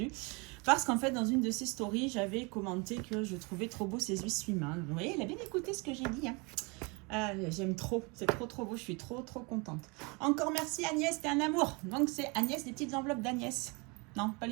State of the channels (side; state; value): left; quieter; 29.4 dB